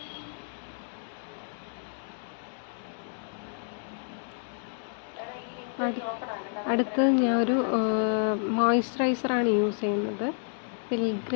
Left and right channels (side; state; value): right; silent; 58 dB below the other